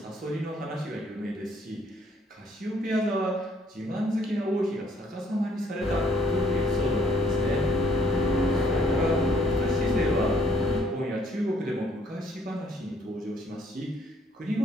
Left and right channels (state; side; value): normal; both; correlation 0.65